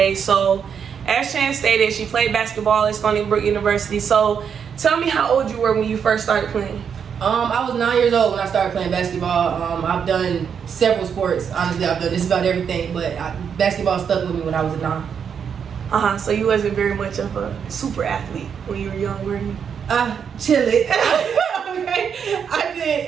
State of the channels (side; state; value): left; quieter; 7.3 dB